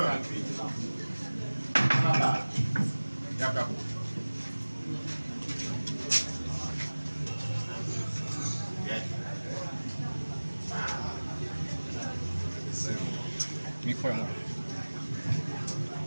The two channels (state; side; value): inverted; both; correlation -1.00